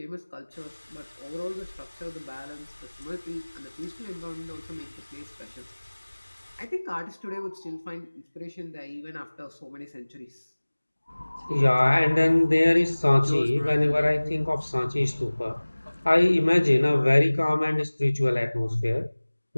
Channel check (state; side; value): inverted; both; correlation -1.00